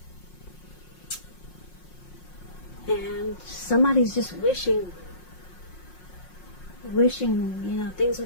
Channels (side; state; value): right; late; 5.5 ms